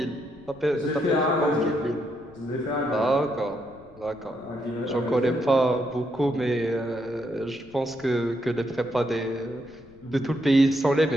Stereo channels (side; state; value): left; noise; rumble, 25 dB below the sound